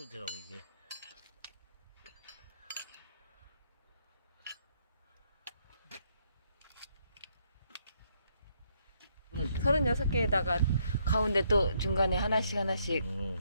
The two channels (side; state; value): both; inverted; correlation -0.72